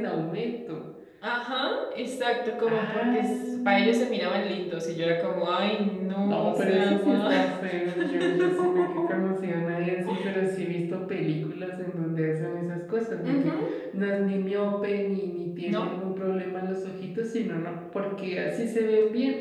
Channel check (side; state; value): both; identical; correlation 1.00